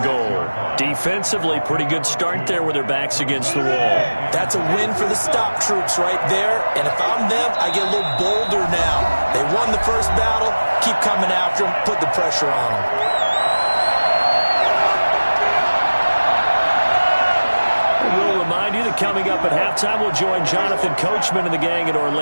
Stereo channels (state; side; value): inverted; both; correlation -1.00